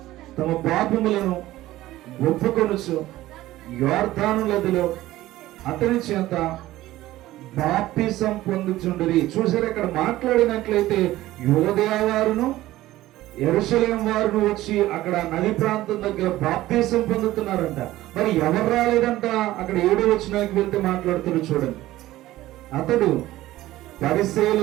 తమ పాపములను ఒప్పుకొనుచు యొర్దాను నదిలో అతని చేత బాప్తిసం పొందుచుండిరి. చూసారు, ఇక్కడ మాట్లాడినట్లయితే యోదయ వారును యెరూషలేము వారును వచ్చి అక్కడ నది ప్రాంతం దగ్గర బాప్తిసం పొందుతున్నారంట. మరి ఎవరు రాలేదంట? అక్కడ 7వ వచనానికి వెళ్తే మాట్లాడుతున్నారు చూడండి. అతడు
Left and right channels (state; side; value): quieter; left; 16.0 dB